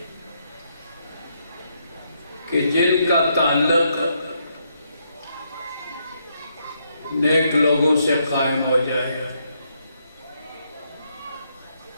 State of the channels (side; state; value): both; inverted; correlation -0.77